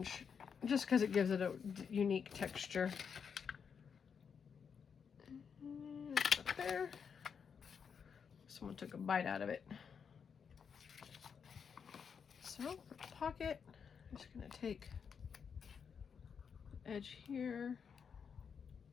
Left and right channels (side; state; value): right; quieter; 6.6 dB